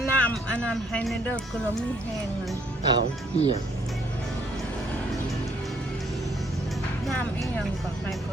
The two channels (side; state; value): both; normal; correlation 0.66